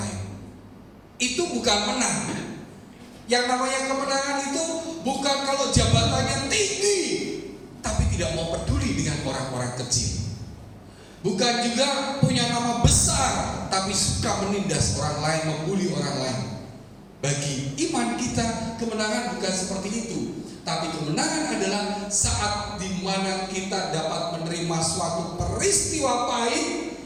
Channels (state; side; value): identical; both; correlation 1.00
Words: Itu bukan menang. Yang namanya kemenangan itu bukan kalau jabatannya tinggi tapi tidak mau peduli dengan orang-orang kecil. Bukan juga punya nama besar tapi suka menindas orang lain, membuli orang lain. Bagi iman kita, kemenangan bukan seperti itu. Tapi kemenangan adalah saat dimana kita dapat menerima suatu peristiwa pahit,